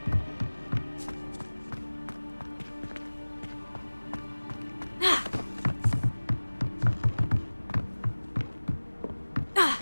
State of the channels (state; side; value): inverted; both; correlation -1.00